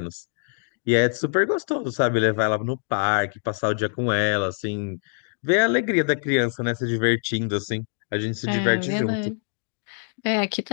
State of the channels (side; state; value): right; silent; digital silence